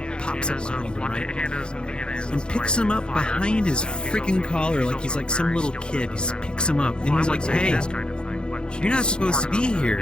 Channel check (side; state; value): right; late; 0.050 ms